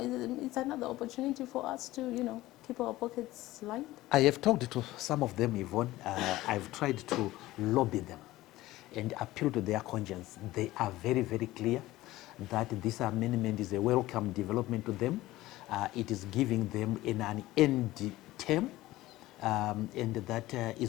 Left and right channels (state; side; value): quieter; right; 17.1 dB